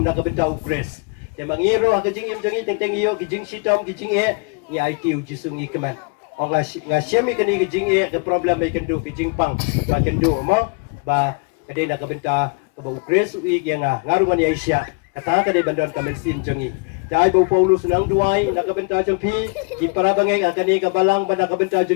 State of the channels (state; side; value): quieter; right; 32.6 dB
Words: na kabenta upres ya bang iyo kejing im jangi teng iyo kejing sitom kejing e ni IQ jisu ni kemen ong ga syemi kani kejing e ke problem mai kendu kejing pang ba kendu mo ba kade na kabenta ba upres ui yang ngaru ni Asia kata kade bandon kamen sim jangi Dai bau Paulus nang duai na kabenta jang pi di para bangeng akani kabalang banda kabenta